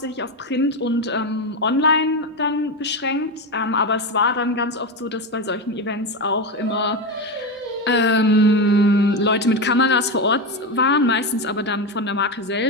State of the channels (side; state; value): both; normal; correlation 0.15